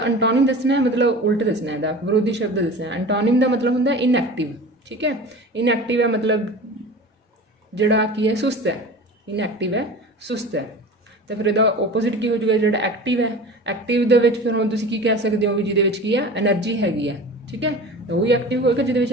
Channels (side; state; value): both; normal; correlation 0.36